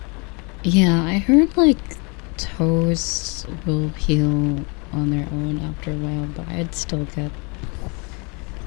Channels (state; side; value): quieter; right; 31.7 dB